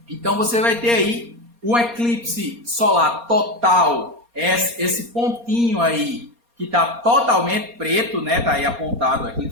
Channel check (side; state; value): left; late; 4.3 ms